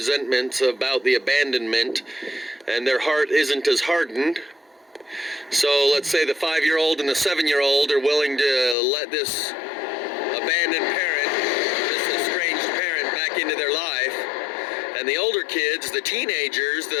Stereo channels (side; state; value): right; drops out; at 8.8 s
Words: about the abandonment and their heart isn't as hardened. So let's say the 5-year-old and the 7-year-old are willing to let this abandoned parent, this estranged parent, back into their life. And the older kids, the teenagers,